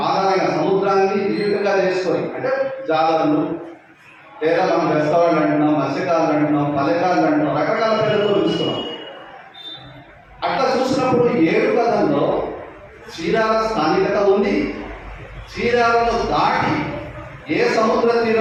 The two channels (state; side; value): identical; both; correlation 1.00